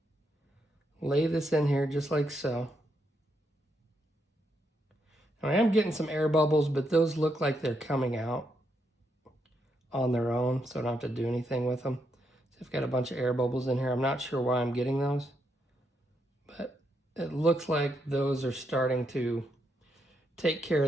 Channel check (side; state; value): both; normal; correlation 0.79